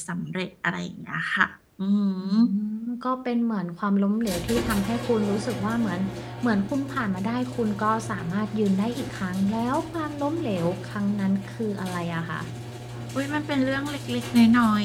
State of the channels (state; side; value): identical; both; correlation 1.00